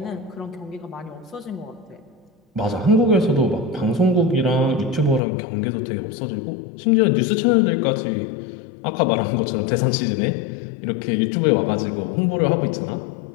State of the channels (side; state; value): right; drops out; at 5.2 s